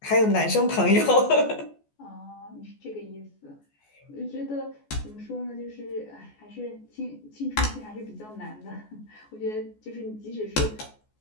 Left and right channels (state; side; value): late; right; 14 ms